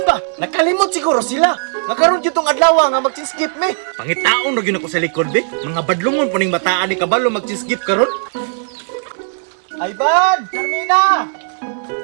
ba? Nakalimot siguro sila. Nga karon yun tong adlaw nga mag-skip me. Pangitaon na yun ako sa likod, be. Mga badlungon po ning bataan ni kabalo mag-skip karon. Ayban! Carmina!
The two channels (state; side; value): silent; left; digital silence